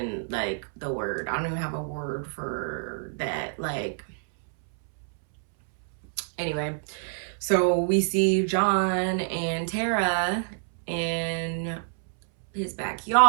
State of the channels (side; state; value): left; silent; 60 dB below the other